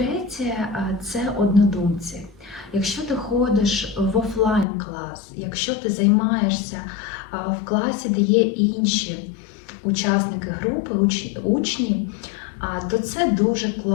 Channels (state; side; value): drops out; right; at 4.7 s